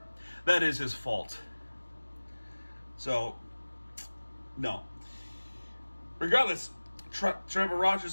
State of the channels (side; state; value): both; inverted; correlation -1.00